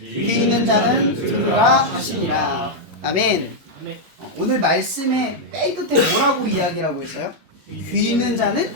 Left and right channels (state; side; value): normal; both; correlation -0.02